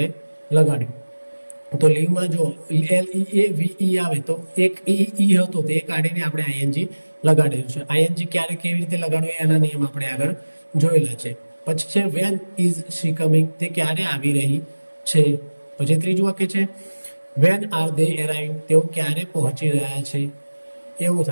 લગાડ્યું. તો લીવમાં જો LEAVE આવે તો એક ઈ હતો તે કાઢીને આપણે ING લગાડેલું છે. ING ક્યારે કેવી રીતે લગાડવું એના નિયમ આપણે આગળ જોયેલા છે. પછી છે વેન ઇઝ શી કમિંગ, તે ક્યારે આવી રહી છે. પછી ત્રીજું વાક્ય છે વેન આર ધે એરાઇવિંગ, તેઓ ક્યારે પહોંચી રહ્યા છે એવું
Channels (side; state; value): both; inverted; correlation -1.00